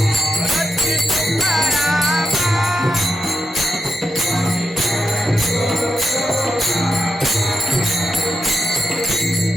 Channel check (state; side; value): normal; both; correlation 0.85